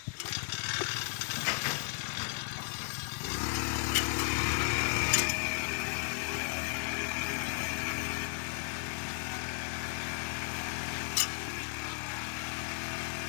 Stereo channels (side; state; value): right; silent; 55 dB below the other